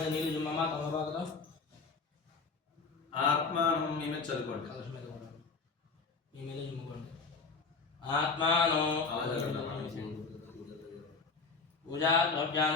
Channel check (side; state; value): right; quieter; 4.6 dB